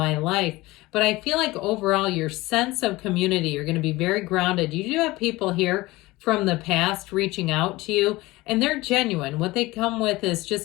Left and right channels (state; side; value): quieter; right; 20.1 dB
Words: life. But I feel like overall, your sense of community, you're going to be very grounded. You do have people here from the past reaching out to you, and they're genuine. What they come with is